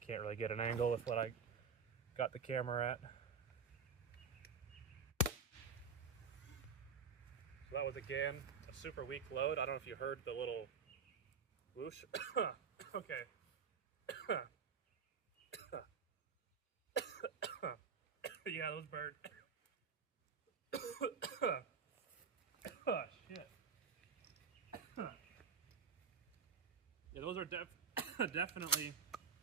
can't really get an angle with what I got the camera at. So that was, again, a super weak load. I don't know if you heard the little whoosh. Okay. Yeah, those burned. Oh, shit. Yeah, those are definitely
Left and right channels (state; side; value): quieter; left; 5.6 dB